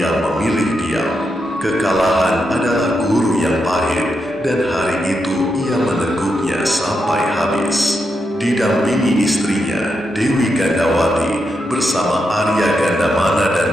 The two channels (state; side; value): normal; both; correlation 0.84